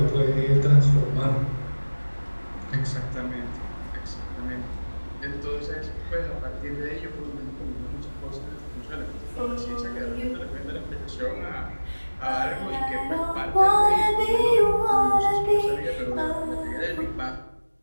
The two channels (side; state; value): both; inverted; correlation -1.00